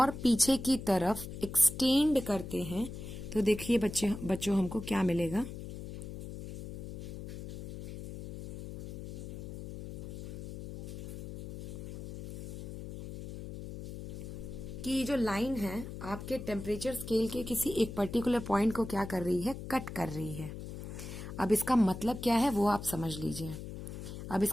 पीछे की तरफ एक्सटेंड करते हैं तो देखिए बच्चों हमको क्या मिलेगा। कि ये जो लाइन है आपके टेम्परेचर स्केल के किसी एक पर्टिकुलर पॉइंट को क्या कर रही है, कट कर रही है। अब इसका मतलब क्या है वो आप समझ लीजिए। अब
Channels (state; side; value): noise; left; hum, 9 dB below the sound